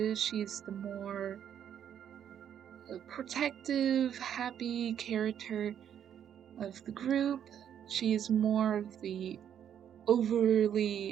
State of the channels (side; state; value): left; quieter; 9.3 dB